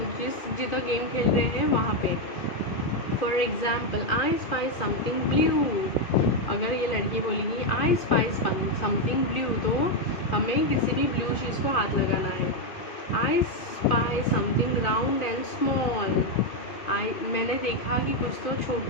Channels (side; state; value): right; late; 2.5 ms